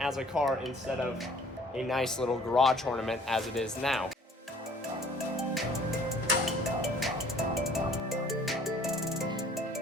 a car instead of a nice little garage ornament as it is now.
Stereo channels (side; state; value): both; normal; correlation 0.54